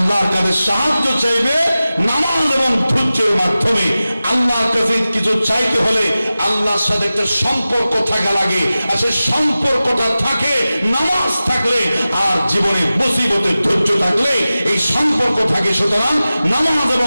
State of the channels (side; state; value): both; inverted; correlation -0.96